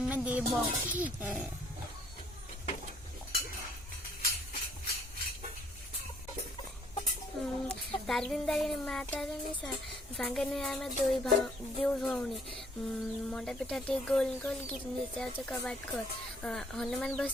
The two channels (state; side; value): normal; both; correlation 0.62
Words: देव तारिणी तारिणी माँ तारिणी सांगे आम दो भौणी मंडा पिठा टे गोल गोल गिटनी जाऊे कबाट खोल हनुमान बस